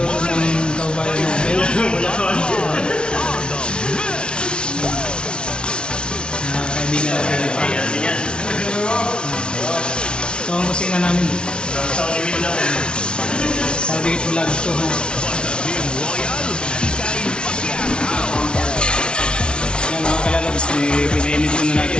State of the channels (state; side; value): late; right; 0.056 ms